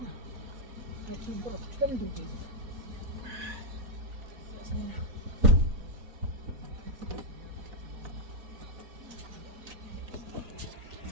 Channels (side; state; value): left; late; 4.1 ms